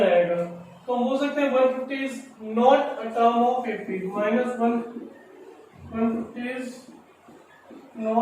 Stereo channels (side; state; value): both; identical; correlation 1.00